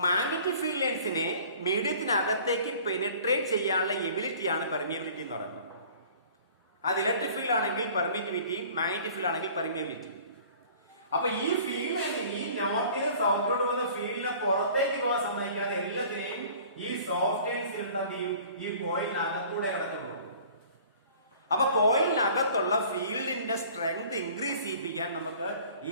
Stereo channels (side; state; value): both; inverted; correlation -0.49